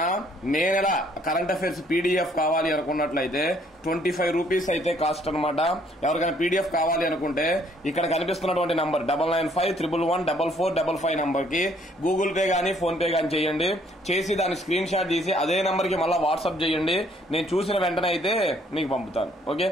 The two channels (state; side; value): normal; both; correlation 0.64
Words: మే నెల కరెంట్ అఫైర్స్ పీడిఎఫ్ కావాలి అనుకున్నట్లయితే 25 రూపీస్ అయితే కాస్ట్ అనమాట. ఎవరికైనా పీడిఎఫ్ కావాలి అనుకుంటే ఇక్కడ కనిపిస్తున్నటువంటి నంబర్ 9951114455 నంబర్ కి గూగుల్ పే గానీ ఫోన్ పే గానీ చేయండి. చేసి దాని స్క్రీన్ షాట్ తీసి అదే నంబర్ కి మళ్ళీ వాట్సాప్ చేయండి. నేను చూసిన వెంటనే అయితే మీకు పంపుతాను. ఓకే,